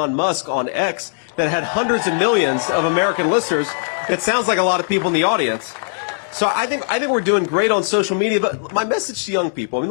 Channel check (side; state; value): right; silent; digital silence